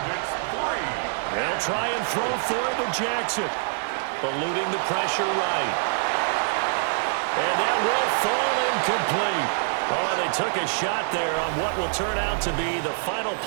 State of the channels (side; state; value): left; silent; 62 dB below the other